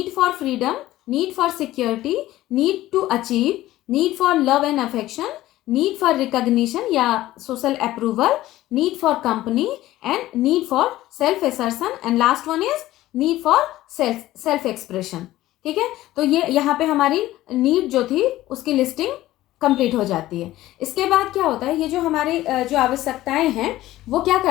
for freedom, need for security, need to achieve, need for love and affection, need for recognition या social approval, need for company and need for self assertion, and last one is need for self expression. ठीक है, तो ये यहाँ पे हमारी need जो थी उसकी लिस्टिंग कंप्लीट हो जाती है। इसके बाद क्या होता है, ये जो हमारी जो आवश्यकताएं हैं वो क्या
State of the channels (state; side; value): quieter; right; 15.6 dB